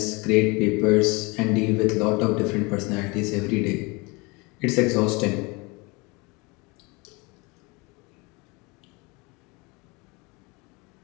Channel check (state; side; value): quieter; right; 27.1 dB